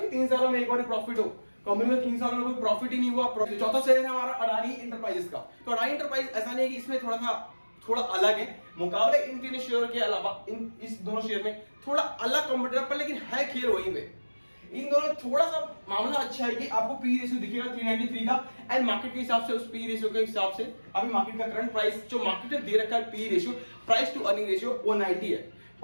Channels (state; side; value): inverted; both; correlation -1.00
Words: 3 सालों में एक बार प्रॉफिट हो, कंपनी में 3 सालों में कोई प्रॉफिट ही नहीं हुआ। चौथा शेयर है हमारा अडानी इंटरप्राइजेस का। तो अडानी इंटरप्राइज ऐसा नहीं है कि इसमें थोड़ा अलग है मुकाबले इन 3 शेयर के अलावा, इस दोनों शेयर में थोड़ा अलग कंपटीटर पर, लेकिन है खेल वही में। इन दोनों थोड़ा सा मामला अच्छा है कि आपको पी रेशियो दिखेगा 393 का, एंड मार्केट के हिसाब से उस पी रेशियो के हिसाब से अभी मार्केट का करंट प्राइस जो मार्केट ने दे रखा है P ratio, price to earning ratio 190 है,